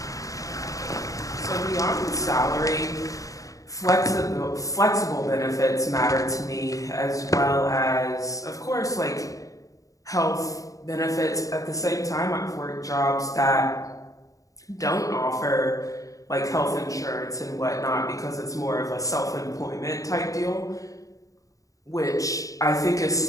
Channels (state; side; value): late; right; 0.16 ms